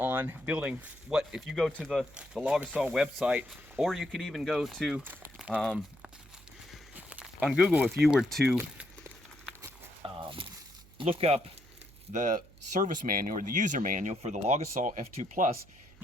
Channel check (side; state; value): right; noise; hum, 24 dB below the sound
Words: building what, if you go to the Logosol website, or you could even go to, on Google, if you were to look up the service manual or the user manual for the Logosol F2 Plus,